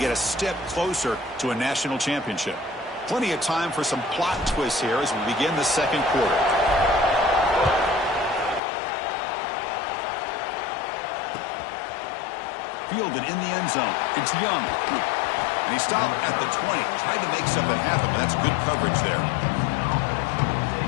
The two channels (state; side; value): drops out; right; at 8.6 s